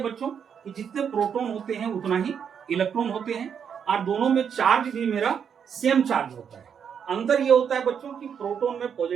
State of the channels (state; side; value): quieter; left; 7.5 dB